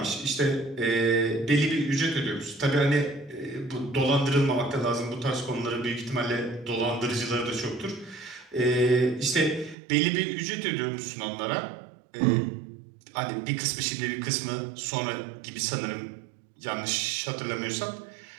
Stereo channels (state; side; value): drops out; left; at 9.8 s